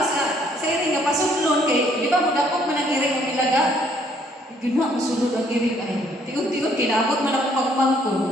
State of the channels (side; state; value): both; normal; correlation 0.65